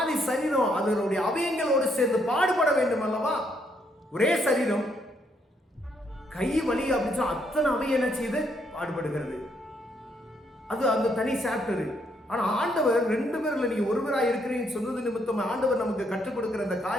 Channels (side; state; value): both; normal; correlation 0.73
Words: சரீரம் அதனுடைய அவயங்களோடு சேர்ந்து பாடுபட வேண்டும் அல்லவா? ஒரே சரீரம் கை வலி அப்படின்னு அத்தனை அவயம் என்ன செய்து பாடுபடுகிறது. அது அந்த தனி சாப்டர். ஆனா ஆண்டவர் 2 பேர்ல நீங்க ஒருவராக இருக்கிறீங்கன்னு சொன்னது நிமித்தம் ஆண்டவர் நமக்கு கற்றுக் கொடுக்கிற அந்த